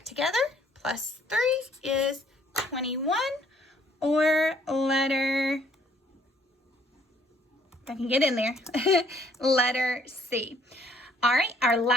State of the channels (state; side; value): normal; both; correlation 0.63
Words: together, plus 3 is 21, or letter, if I can get in there, letter C. All right, our